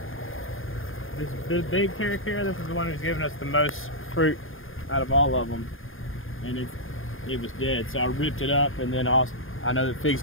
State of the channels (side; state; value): right; late; 0.59 ms